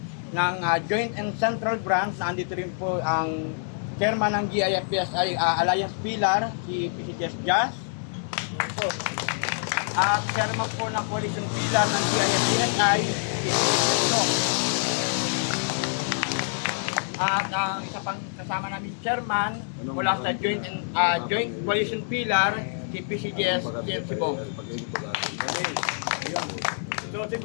ng Joint and Central Branch, nandito rin po ang Chairman ng GIFPSI Alliance Pilar, si PCGS Jazz. At Chairman po ng Coalition Pilar ng GIFPSI, si PCGS. At ang isa pang kasama namin Chairman mula sa Joint Coalition Pilar, si PCGS CMC Bong. So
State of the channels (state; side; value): silent; right; 61 dB below the other